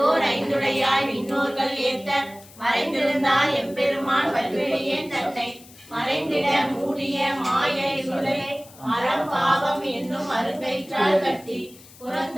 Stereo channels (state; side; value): noise; left; hiss, 22 dB below the sound